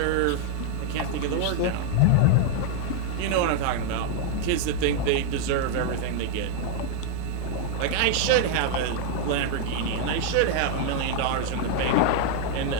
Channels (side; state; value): both; different; correlation 0.00